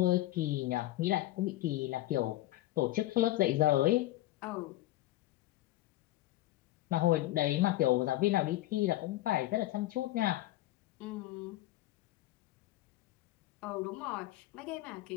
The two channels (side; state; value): right; quieter; 16.1 dB